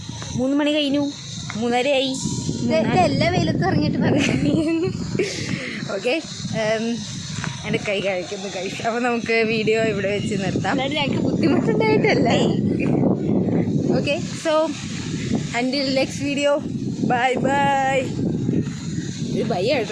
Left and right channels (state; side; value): identical; both; correlation 1.00